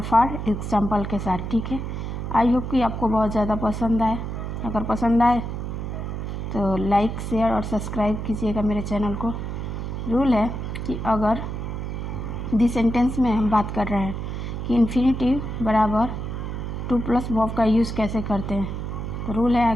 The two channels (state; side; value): noise; right; hum, 5 dB below the sound